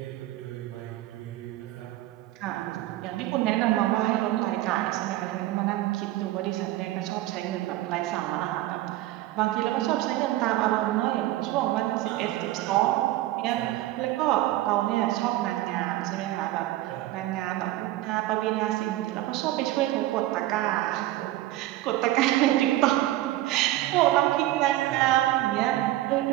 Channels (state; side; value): quieter; left; 15.8 dB